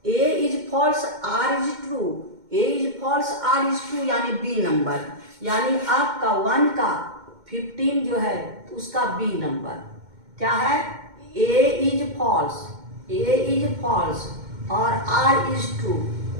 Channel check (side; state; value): left; late; 2.1 ms